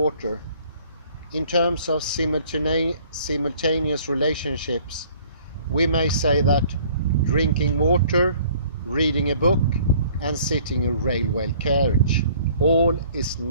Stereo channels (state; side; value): inverted; both; correlation -0.56